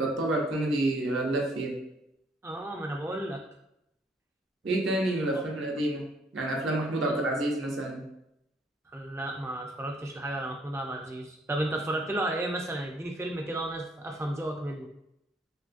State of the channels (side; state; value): both; normal; correlation 0.65